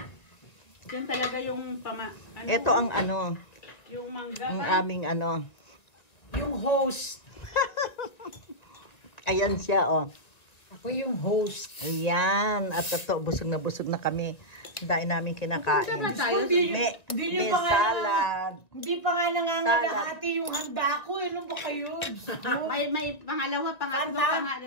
Yan talaga yung Ito ang ano, yung mangga. ang aming ano. Yung host. Ayan siya, oh. Ako yung host. Ayan. At ito, busog na kami. Dahil namin kinakain. May salad. Hindi pa nga nangangalahati yung handa ko. Ano ba kayo? May pangalawa, pangatlo.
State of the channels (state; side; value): late; right; 1.6 ms